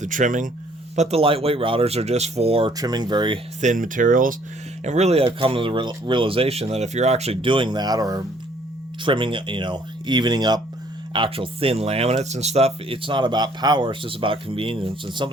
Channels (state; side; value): normal; both; correlation 0.61